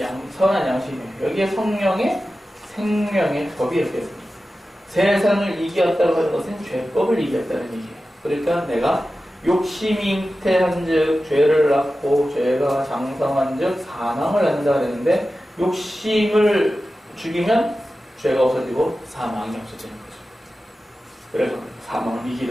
양심이에요. 여기에 성령의 생명의 법이 이렇게 있습니다. 세상을 이겼다고 하는 것은 죄법을 이겼다는 얘기예요. 그러니까 내가 욕심이 잉태한즉 죄를 낳고 죄가 장성한즉 사망을 낳는다 그랬는데 욕심을 죽이면 죄가 없어지고 사망이 없어지는 거죠. 그래서 사망을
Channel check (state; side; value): normal; both; correlation 0.94